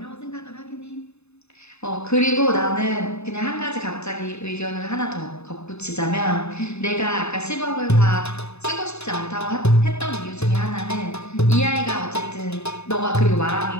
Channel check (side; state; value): right; late; 0.80 ms